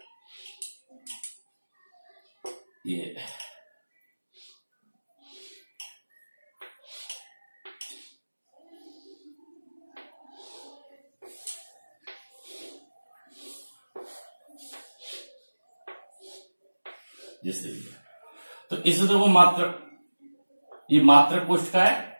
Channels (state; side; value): inverted; both; correlation -1.00